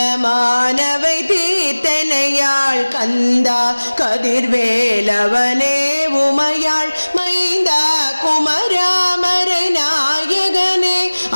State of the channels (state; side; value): inverted; both; correlation -1.00